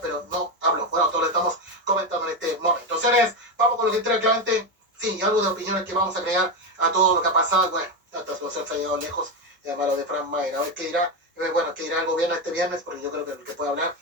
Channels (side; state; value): both; normal; correlation 0.12